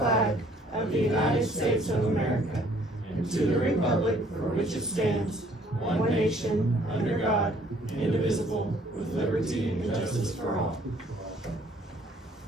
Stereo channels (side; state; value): both; normal; correlation 0.60